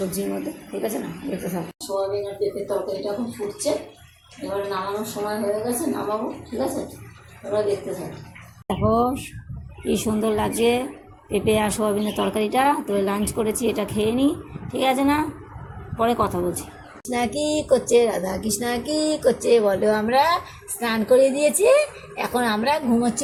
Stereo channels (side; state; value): both; identical; correlation 1.00